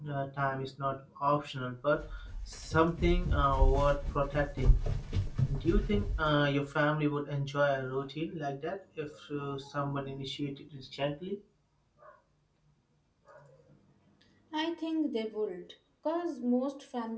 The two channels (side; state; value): both; identical; correlation 1.00